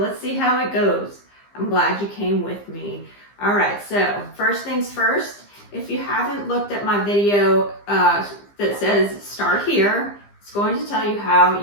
see how it goes. I'm glad you came with me. All right, so first things first, if you haven't looked at my video that says start here, it's going to tell you how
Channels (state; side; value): late; right; 15 ms